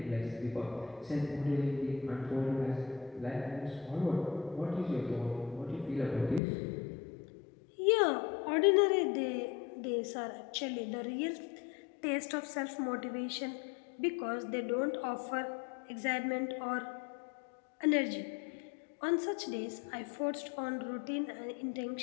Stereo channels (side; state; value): right; drops out; at 6.4 s